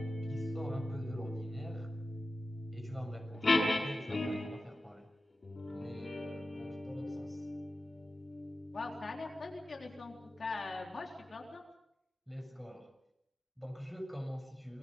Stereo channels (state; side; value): normal; both; correlation 0.94